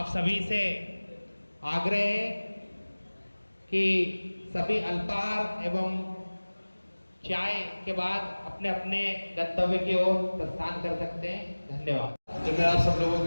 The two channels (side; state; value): both; inverted; correlation -1.00